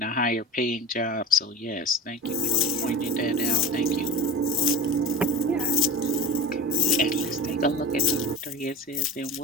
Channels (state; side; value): normal; both; correlation 0.31